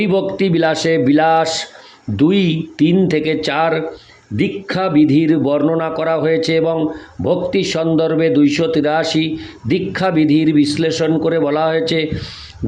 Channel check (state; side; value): identical; both; correlation 1.00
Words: বিলাসে বিলাস 2:3-4 দীক্ষা বিধির বর্ণনা করা হয়েছে এবং ভক্তি সন্দর্ভে 283 দীক্ষা বিধির বিশ্লেষণ করে বলা হয়েছে।